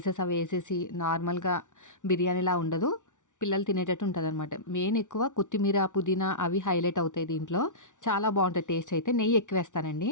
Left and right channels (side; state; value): right; late; 0.86 ms